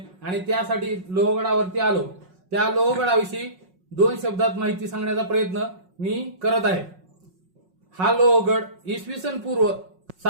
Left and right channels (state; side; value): late; left; 5.5 ms